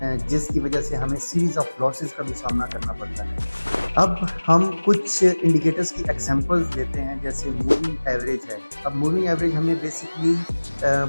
जिसकी वजह से हमें सीरीज़ ऑफ लॉसेस का भी सामना करना पड़ता है। अब हम कुछ इंडिकेटर्स की एग्जांपल्स लेते हैं, जैसे मूविंग एवरेज है। अब मूविंग एवरेज हमें बेसिकली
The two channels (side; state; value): both; inverted; correlation -1.00